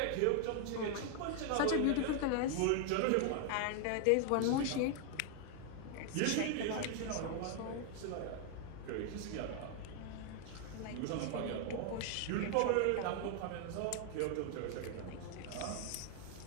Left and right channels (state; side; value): different; both; correlation 0.00